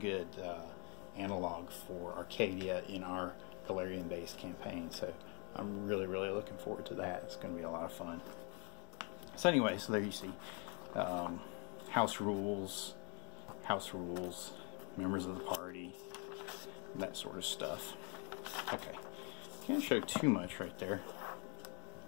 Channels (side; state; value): right; quieter; 35.0 dB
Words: analog for Arcadia in our Galarian-based campaign. So I'm really looking forward to that. It's going to be a lot of fun. So anyway, so there you see house rules, members of the party, that sort of stuff. Okay, can't show too much right there.